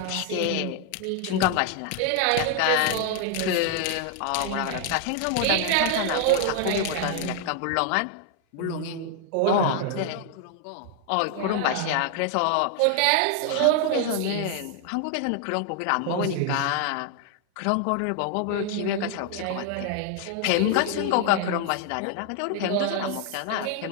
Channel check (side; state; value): both; different; correlation 0.00